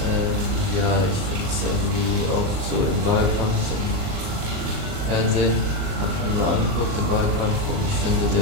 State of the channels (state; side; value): late; left; 39 ms